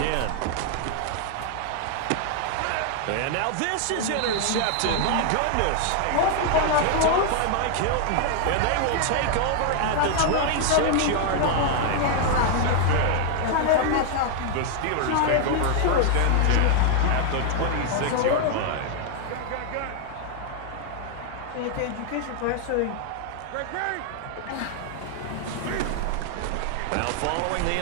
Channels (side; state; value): both; different; correlation 0.00